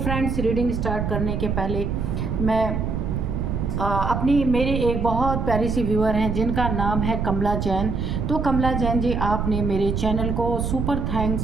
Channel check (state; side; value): noise; right; rumble, 1 dB below the sound